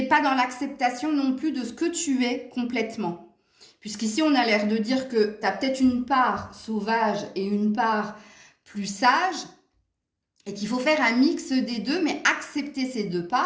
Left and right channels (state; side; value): identical; both; correlation 1.00